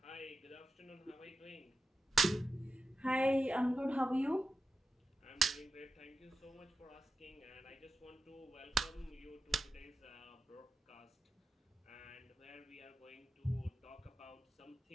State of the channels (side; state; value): both; normal; correlation 0.90